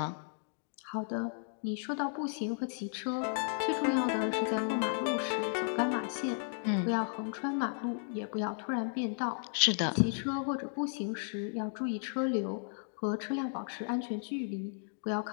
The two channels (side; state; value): right; silent; digital silence